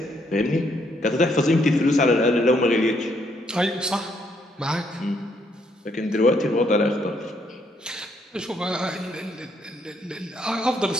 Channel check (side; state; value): both; normal; correlation 0.71